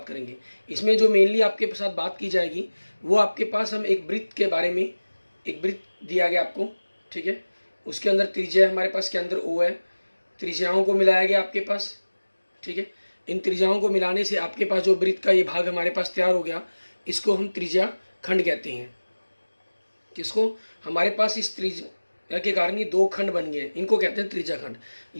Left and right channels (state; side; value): inverted; both; correlation -1.00